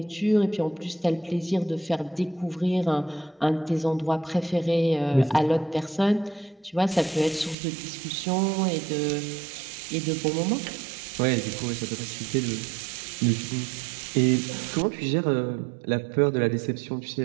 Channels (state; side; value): drops out; left; at 7.6 s